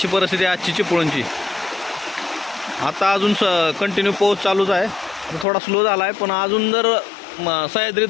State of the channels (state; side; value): drops out; right; at 5.5 s